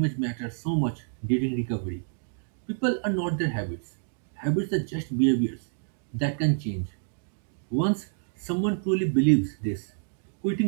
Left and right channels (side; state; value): left; silent; digital silence